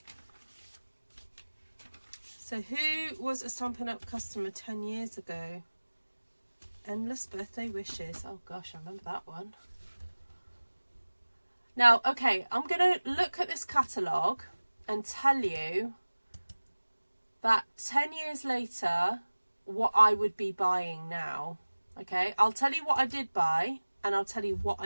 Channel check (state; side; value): inverted; both; correlation -1.00